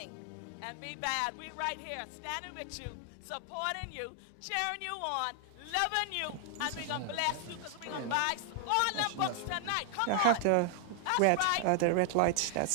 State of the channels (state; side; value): different; both; correlation 0.00